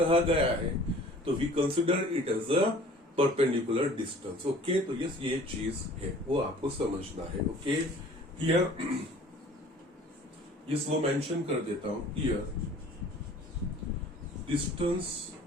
गया है तो we consider it as a perpendicular distance. Okay, तो यस ये चीज है, वो आपको समझना है। ओके, हियर यस वो मेंशन कर देता हूं, here distance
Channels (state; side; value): normal; both; correlation 0.49